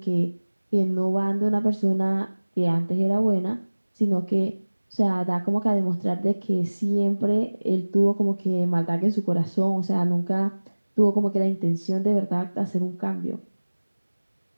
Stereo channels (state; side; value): inverted; both; correlation -1.00